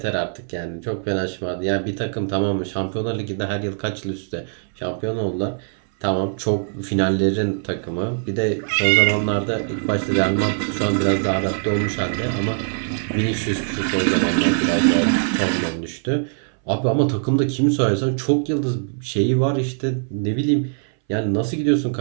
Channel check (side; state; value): left; silent; 60 dB below the other